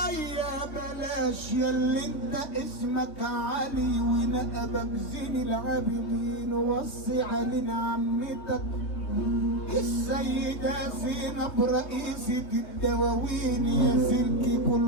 بلاش، ياللي انت اسمك علي ونقبك زين العابدين، وصي علينا عمتك السيدة زينب رئيسة الدواوين، يا سلكي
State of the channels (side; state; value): right; late; 3.2 ms